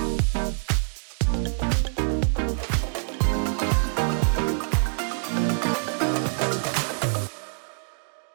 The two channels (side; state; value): left; silent; digital silence